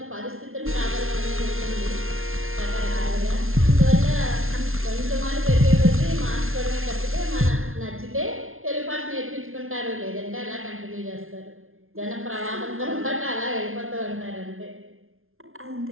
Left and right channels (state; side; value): late; left; 0.61 ms